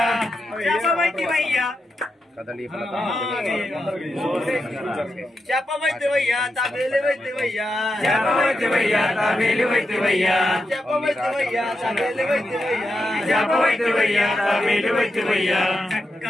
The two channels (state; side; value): normal; both; correlation 0.87